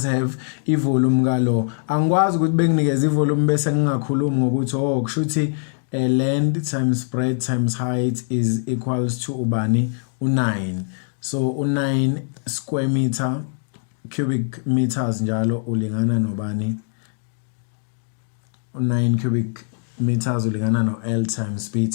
have ivolume kalo angikwazi ukuthi benginikeza ivolume bese ngingakhulumi ngokuthi kusho ukuthi length times breadth times height is equals to ubani u9 so u9 square meter cubic meters njalo ulingana nobani u9 cubic meters ulingana no L times B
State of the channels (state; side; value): silent; right; digital silence